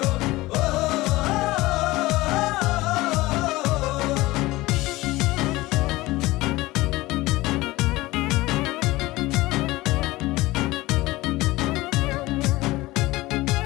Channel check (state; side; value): quieter; right; 19.5 dB